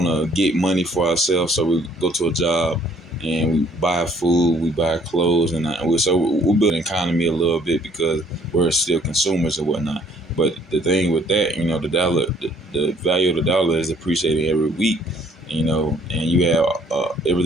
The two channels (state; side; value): normal; both; correlation 0.60